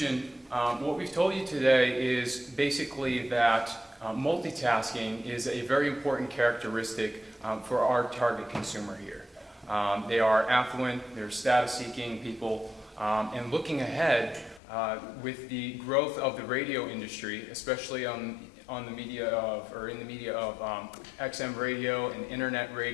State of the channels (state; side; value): drops out; right; at 14.6 s